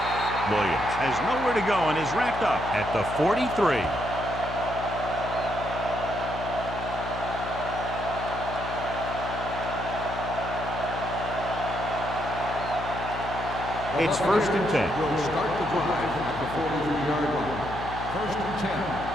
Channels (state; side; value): noise; left; hum, 9 dB below the sound